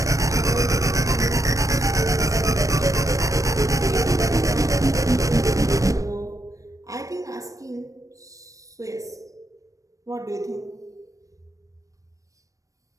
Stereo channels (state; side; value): late; left; 0.16 ms